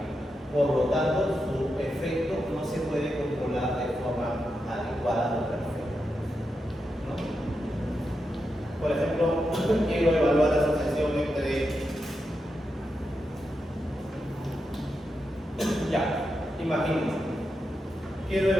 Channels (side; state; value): both; normal; correlation 0.87